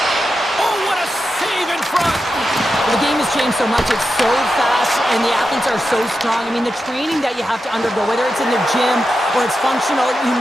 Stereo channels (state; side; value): normal; both; correlation 0.89